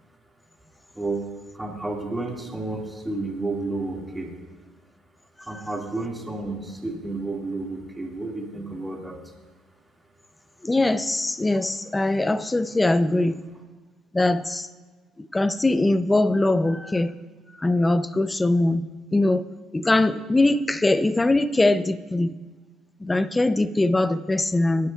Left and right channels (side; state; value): both; normal; correlation 0.95